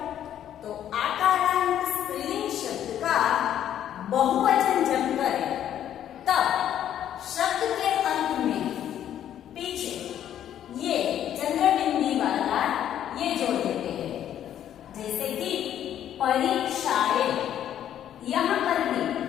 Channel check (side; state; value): right; quieter; 10.7 dB